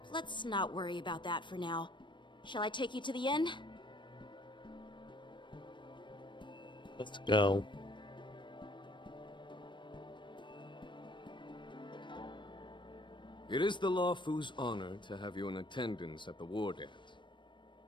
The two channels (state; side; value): late; right; 0.23 ms